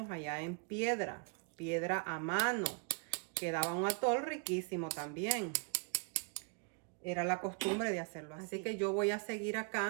allá en piedra a mano. Quedaba un atol riquísimo también. Era la costumbre de hacerlo así. Así que yo voy a seguir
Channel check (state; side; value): quieter; left; 37.1 dB